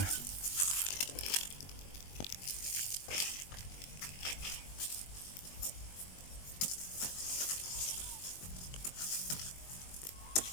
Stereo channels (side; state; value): right; late; 21 ms